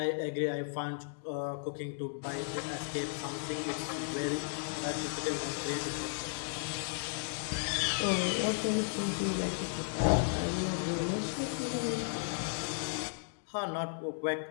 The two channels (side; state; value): right; silent; digital silence